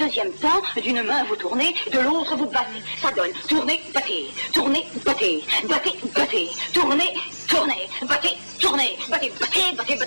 temps, d'une main vous tournez, de l'autre vous battez. Ça donne tourner, battez, tourner, battez, battez, battez, tourner, tourner, battez, tourner, battez, battez, battez,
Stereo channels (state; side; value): inverted; both; correlation -1.00